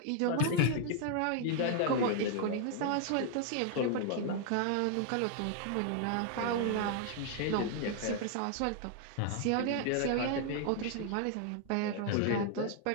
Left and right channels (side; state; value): both; different; correlation 0.00